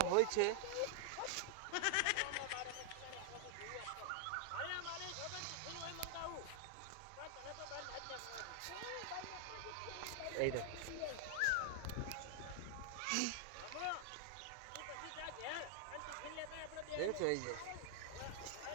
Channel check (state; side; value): different; both; correlation 0.00